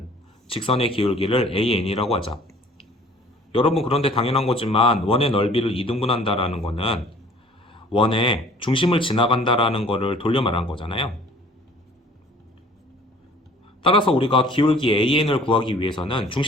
직선의 기울기를 an이라고 하자. 여러분 그런데 당연한 거지만 원의 넓이를 2등분한다라는 거는 원의 중심을 지나간다라는 거를 돌려 말한 거잖아요. 따라서 우리가 기울기 an을 구하기 위해서는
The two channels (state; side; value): normal; both; correlation 0.52